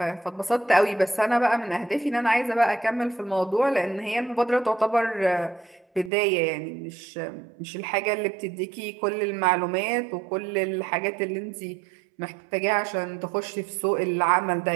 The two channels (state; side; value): drops out; left; at 6.1 s